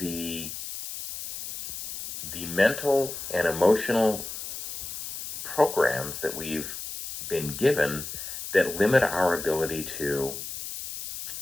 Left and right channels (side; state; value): left; noise; hiss, 8 dB below the sound